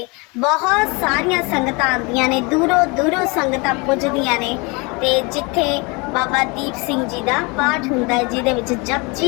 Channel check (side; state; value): right; quieter; 28.5 dB